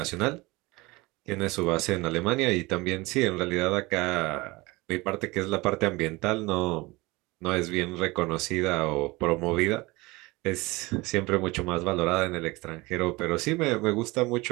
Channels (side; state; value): left; quieter; 22.6 dB